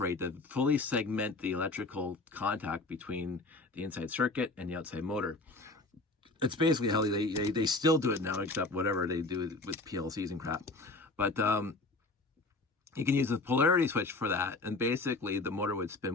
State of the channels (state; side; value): quieter; right; 3.1 dB